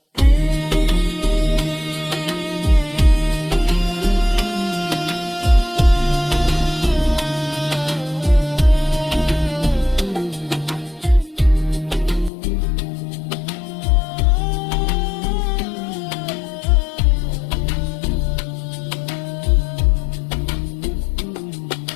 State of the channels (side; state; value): right; drops out; at 12.3 s